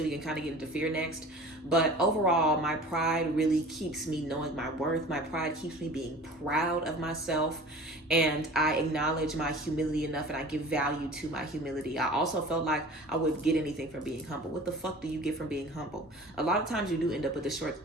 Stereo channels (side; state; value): both; normal; correlation 0.42